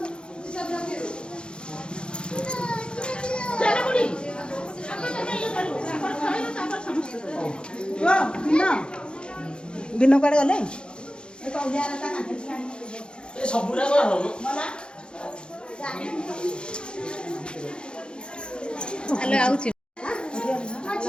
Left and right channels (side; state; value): right; late; 0.052 ms